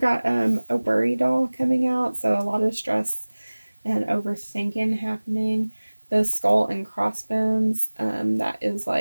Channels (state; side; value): inverted; both; correlation -1.00